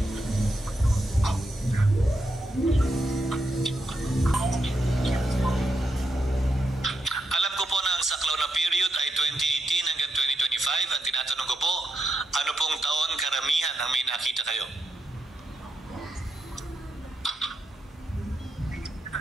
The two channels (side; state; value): both; normal; correlation 0.82